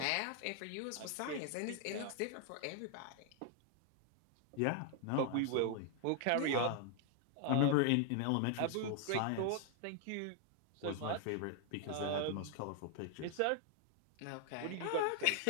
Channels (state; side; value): different; both; correlation 0.00